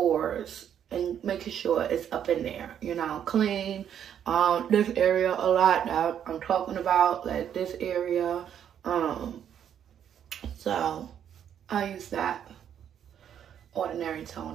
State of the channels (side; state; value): left; quieter; 9.2 dB